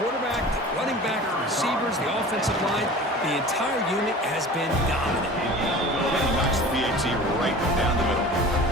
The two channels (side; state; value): both; normal; correlation 0.39